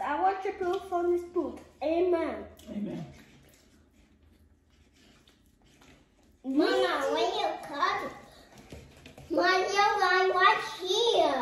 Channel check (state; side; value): identical; both; correlation 1.00